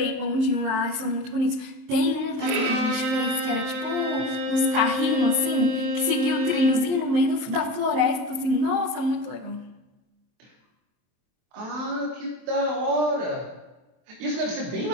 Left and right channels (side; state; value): left; late; 23 ms